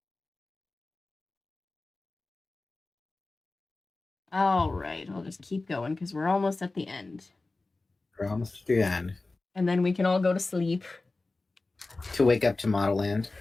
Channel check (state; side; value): quieter; right; 3.3 dB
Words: All right, I'll just keep going because we're almost at the end. We're almost at the end. And then we can all go to sleep. To wake up to Model Land.